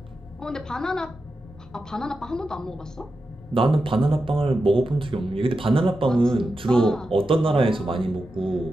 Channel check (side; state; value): both; normal; correlation 0.90